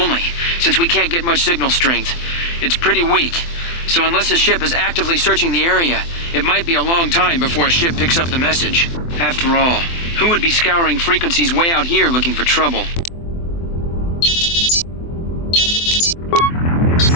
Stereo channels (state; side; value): late; right; 24 ms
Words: since we can't get much signal strength. It's pretty weak, so unless a ship is actively searching the area, it might be a long time before a ship picks up the message. After all, who would be scouring frequencies way out here looking for trouble?